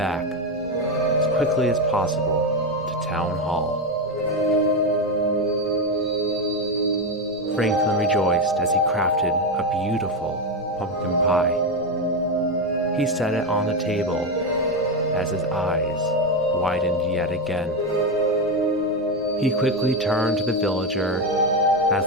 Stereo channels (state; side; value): noise; right; rumble, 26 dB below the sound